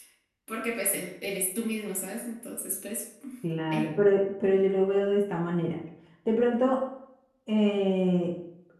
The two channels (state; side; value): identical; both; correlation 1.00